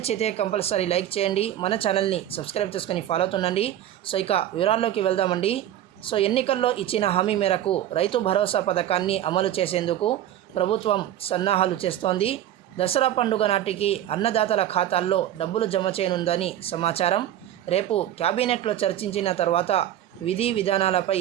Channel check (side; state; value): left; quieter; 11.9 dB